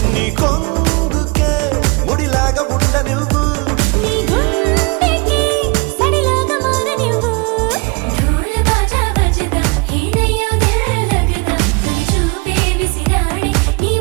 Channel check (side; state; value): left; quieter; 29.3 dB